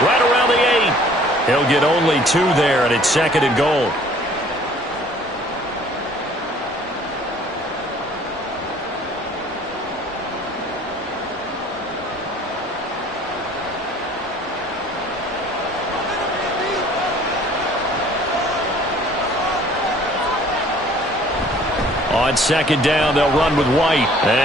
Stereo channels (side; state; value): both; normal; correlation 0.54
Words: right around the 8. He'll get only 2 there, and it's 2nd and goal. On 2nd down, they'll run with White.